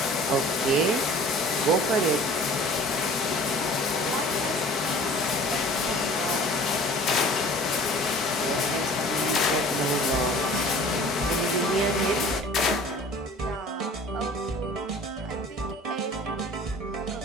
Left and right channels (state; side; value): normal; both; correlation 0.46